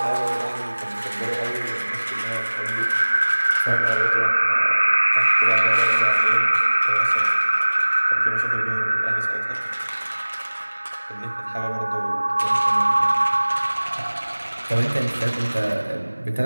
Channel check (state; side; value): inverted; both; correlation -1.00